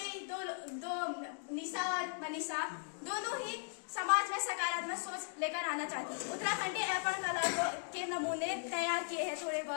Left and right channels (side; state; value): right; silent; digital silence